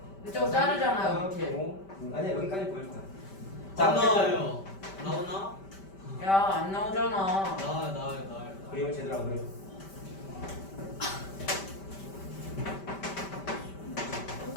이쪽 자르잖아요. 하나, 밑에. 아니야, 여기까지 보일 거야. 안 어쨌든 나와요. 나오나? 야, 안 나오잖아. 나와요. 그림을 제대로 안 그려.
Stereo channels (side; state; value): right; late; 5.1 ms